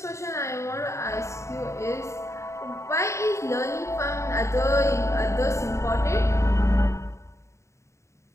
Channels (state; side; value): late; right; 0.14 ms